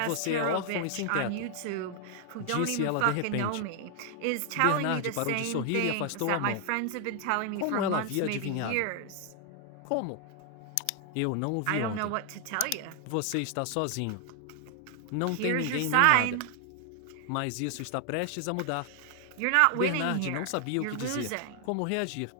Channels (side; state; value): both; different; correlation 0.00